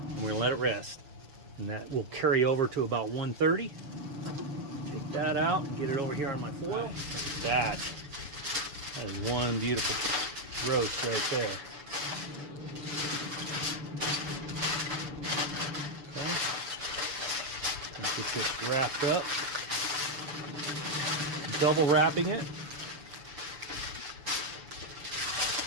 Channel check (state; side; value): late; left; 6.9 ms